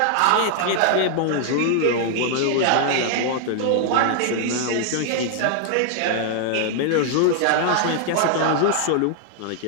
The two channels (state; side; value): different; both; correlation 0.00